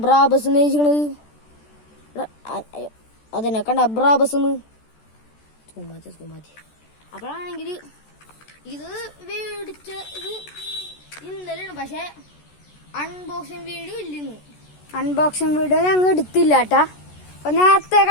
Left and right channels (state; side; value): late; right; 14 ms